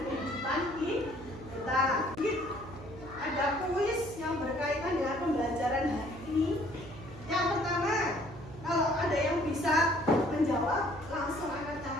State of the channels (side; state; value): right; noise; hum, 15 dB below the sound